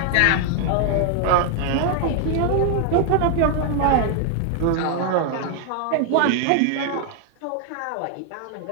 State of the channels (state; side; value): different; both; correlation 0.00